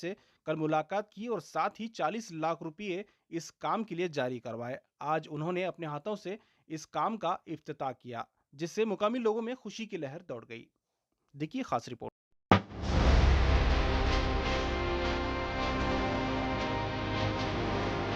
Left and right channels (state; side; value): identical; both; correlation 1.00